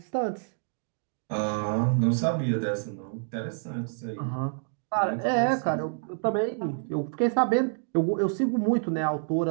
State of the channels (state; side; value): silent; left; digital silence